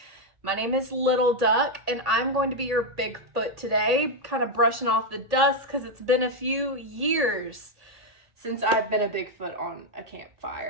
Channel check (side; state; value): left; late; 1.8 ms